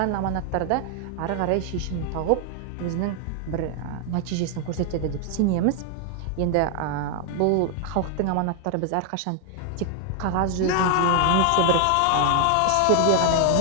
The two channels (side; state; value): both; different; correlation 0.00